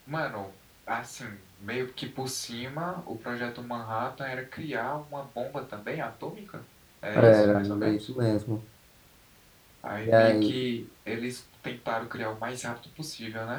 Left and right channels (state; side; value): identical; both; correlation 1.00